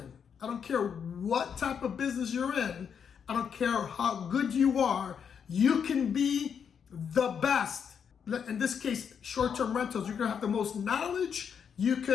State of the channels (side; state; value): right; quieter; 7.3 dB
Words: I don't care what type of business you're in. I don't care how good you are. You can be the best. In this case, short-term rentals, you're gonna have the most knowledge. You